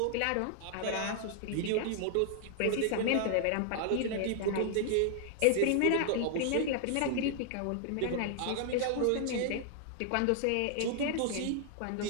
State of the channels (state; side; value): different; both; correlation -0.01